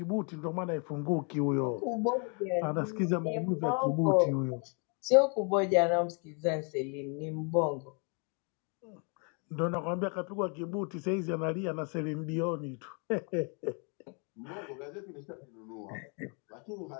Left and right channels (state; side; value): quieter; right; 37.1 dB